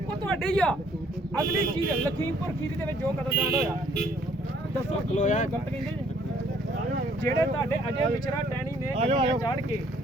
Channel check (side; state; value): both; normal; correlation 0.63